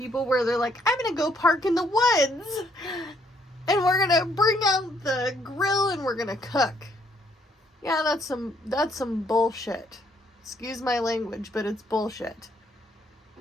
where they're like, I'm going to go park in the woods and we're going to bring out the grill and we're going to cook. Yeah, that's some bullshit. Excuse my language, but it's bullshit.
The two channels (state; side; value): normal; both; correlation 0.69